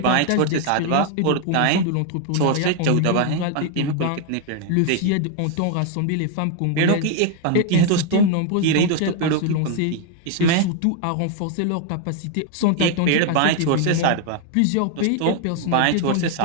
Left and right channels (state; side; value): different; both; correlation 0.01